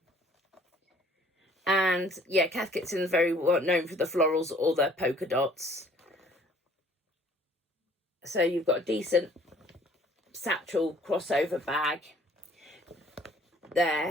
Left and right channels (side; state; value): both; normal; correlation 0.56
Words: And yeah, Cath Kidston is very well known for the florals or the polka dots. So you've got a decent satchel crossover bag